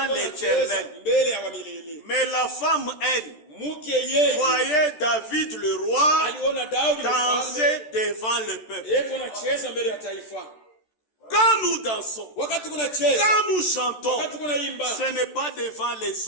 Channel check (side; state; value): right; late; 13 ms